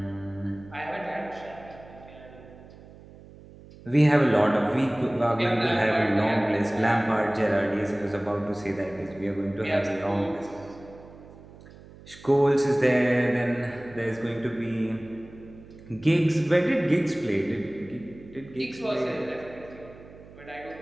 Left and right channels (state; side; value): noise; right; hum, 20 dB below the sound